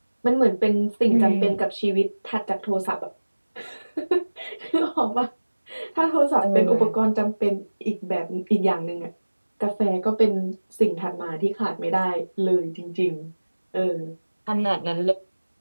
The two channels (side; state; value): both; inverted; correlation -1.00